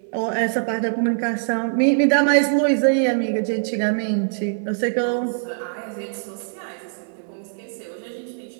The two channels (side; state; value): left; silent; digital silence